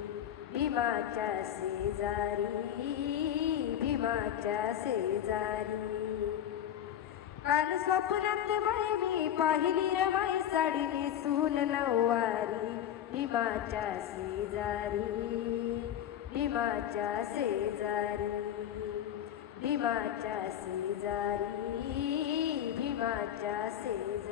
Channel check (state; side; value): quieter; right; 10.5 dB